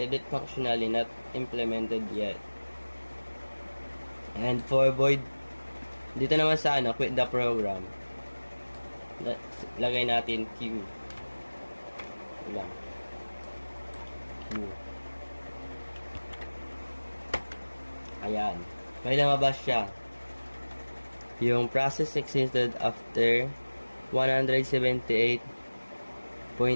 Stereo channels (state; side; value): inverted; both; correlation -1.00